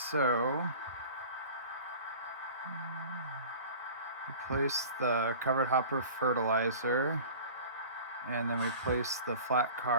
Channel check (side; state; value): both; inverted; correlation -0.41